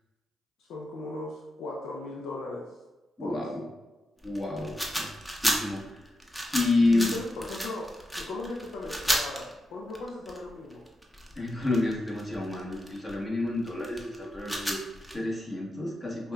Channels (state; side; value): normal; both; correlation 0.88